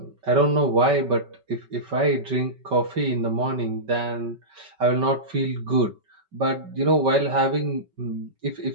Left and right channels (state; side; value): late; left; 5.3 ms